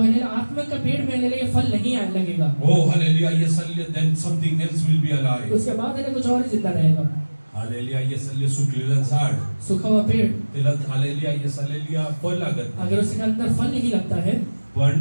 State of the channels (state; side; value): inverted; both; correlation -1.00